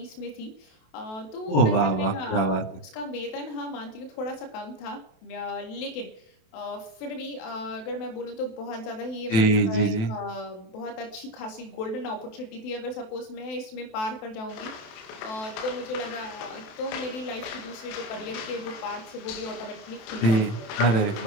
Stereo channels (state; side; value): late; right; 27 ms